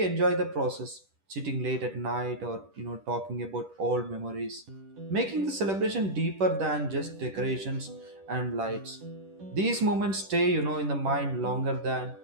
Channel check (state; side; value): late; left; 10 ms